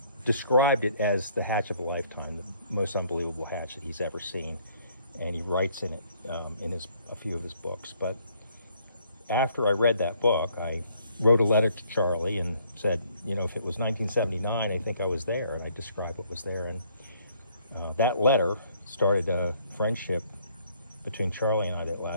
described it as the hatch of a lifetime, the most unbelievable hatch that he's ever seen, and he writes in it in a few of his books. But after I read that book, I wrote a letter to Charlie and said, you know, if it was 1979, I think I was there, and I described what was there. And that letter started a friendship between Charlie and I that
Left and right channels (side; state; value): both; inverted; correlation -0.65